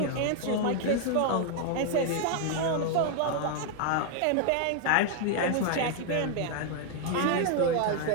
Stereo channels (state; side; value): different; both; correlation 0.00